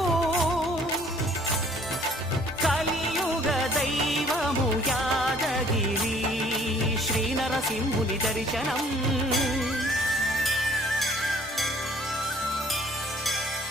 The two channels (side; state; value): both; normal; correlation 0.58